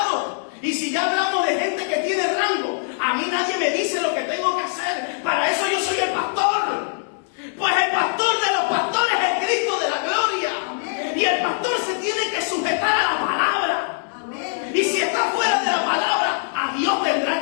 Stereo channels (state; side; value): silent; right; 61 dB below the other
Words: Y si ya hablamos de gente que tiene rango, a mí nadie me dice lo que tengo que hacer. Para eso yo soy el pastor. Pues el pastor de los pastores es el Cristo de la gloria. Y el pastor se tiene que sujetar a la palabra. Y si está fuera de la palabra, a Dios